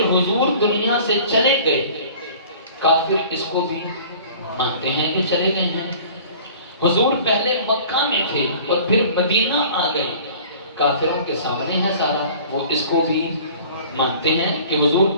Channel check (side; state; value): both; inverted; correlation -0.46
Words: حضور دنیا سے چلے گئے، کافر اس کو بھی مانتے ہیں کہ چلے گئے ہیں۔ حضور پہلے مکہ میں تھے اور پھر مدینہ آ گئے، کافروں کے سامنے ہے سارا، وہ اس کو بھی مانتے ہیں کہ حضور